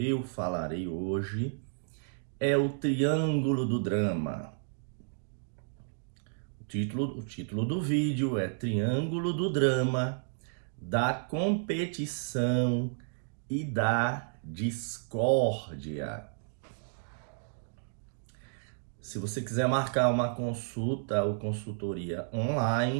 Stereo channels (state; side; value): silent; left; digital silence